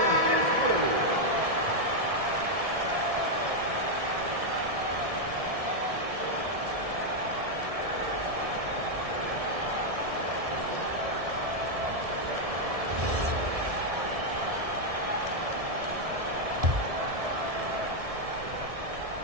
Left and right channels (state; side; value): late; left; 1.7 ms